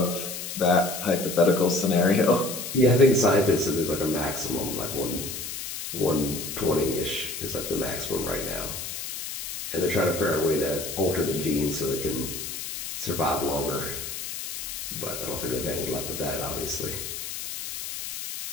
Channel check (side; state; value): left; noise; hiss, 7 dB below the sound